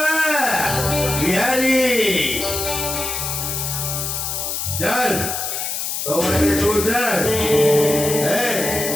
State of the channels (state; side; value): noise; left; hiss, 3 dB below the sound